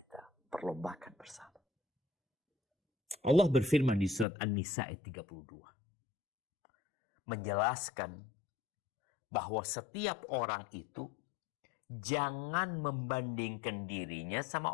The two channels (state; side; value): drops out; right; at 4.2 s